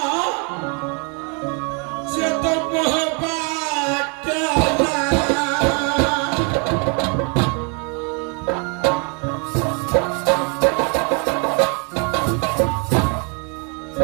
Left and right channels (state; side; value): quieter; left; 35.7 dB